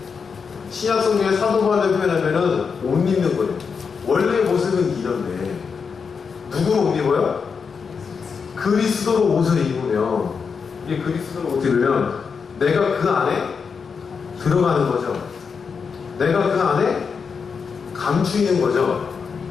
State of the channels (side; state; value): right; quieter; 5.8 dB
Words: 신약성경의 사도 바울을 표현하면은 옷 입는 거예요. 원래 모습은 이런데 누구로 옷 입어요? 그리스도로 옷을 입으면, 이게 그리스도로 옷을 입으면 내가 그 안에 들어가는 거죠. 내가 그 안에 감추이는 거죠.